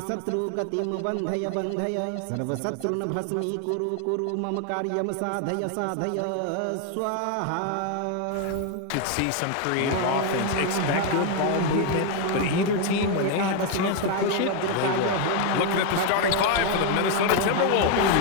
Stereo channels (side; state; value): both; different; correlation 0.01